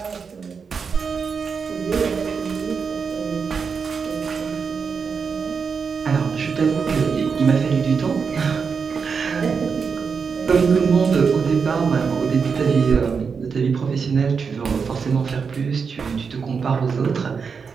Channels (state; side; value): quieter; left; 5.7 dB